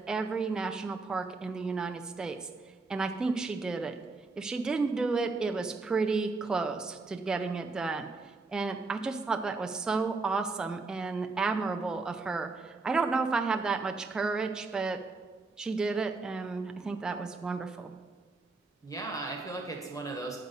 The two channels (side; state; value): left; quieter; 3.8 dB